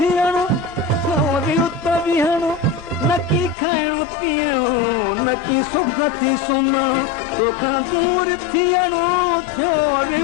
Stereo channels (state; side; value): drops out; right; at 3.6 s